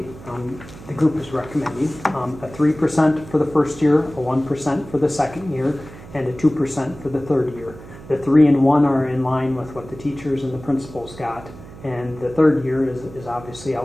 the group is recommending a 3% for the first year, a 1% for the second year, and a 2% for the third year. The 3 and 1 are in line with what the teachers and the principals got, and the third year is obviously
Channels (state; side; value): noise; right; hum, 17 dB below the sound